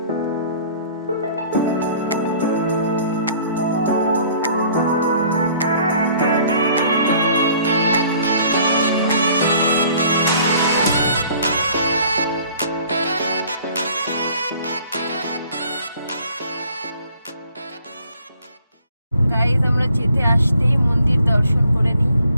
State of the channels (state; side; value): inverted; both; correlation -0.56